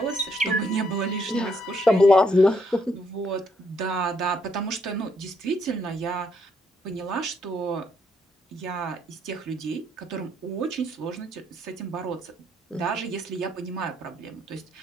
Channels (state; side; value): normal; both; correlation 0.72